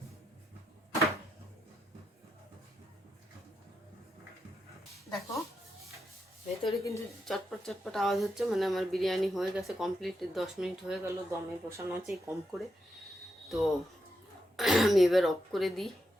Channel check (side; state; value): both; normal; correlation 0.84